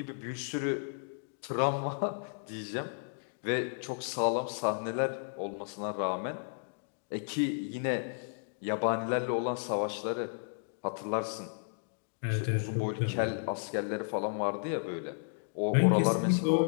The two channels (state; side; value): silent; right; digital silence